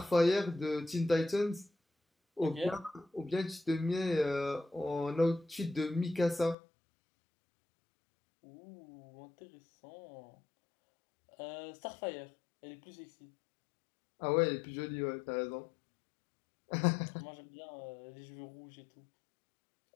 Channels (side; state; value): right; drops out; at 6.6 s